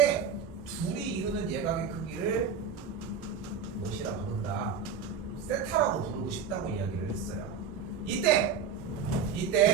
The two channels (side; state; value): left; quieter; 6.5 dB